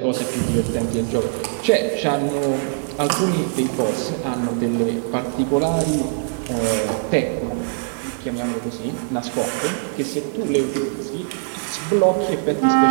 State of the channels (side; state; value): left; silent; 62 dB below the other